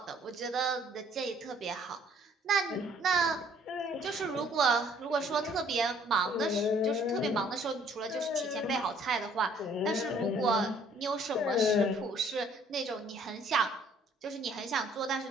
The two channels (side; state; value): both; normal; correlation 0.60